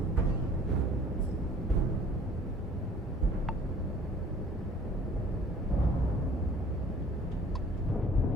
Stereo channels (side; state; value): both; normal; correlation 0.52